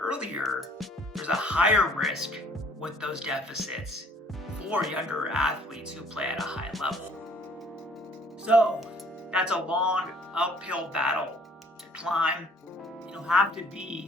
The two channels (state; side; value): normal; both; correlation 0.58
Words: there's a higher risk with those deficits for younger athletes who play at a high level. So that's a long uphill battle to climb. You'll have to